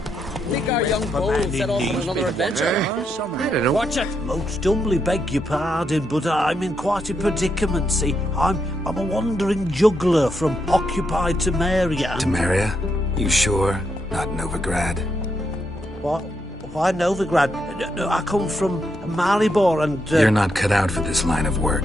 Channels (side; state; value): both; normal; correlation 0.80